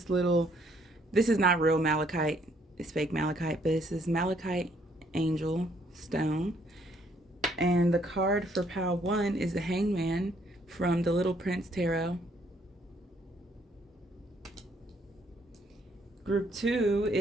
is not real malachite, it's fake malachite, but this is malachite angel stone. And the card for pile 1 is the Hangman from the Little Prince Tarot. Group 2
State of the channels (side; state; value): both; normal; correlation 0.67